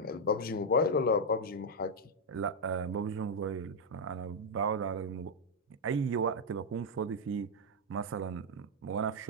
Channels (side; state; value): both; normal; correlation 0.00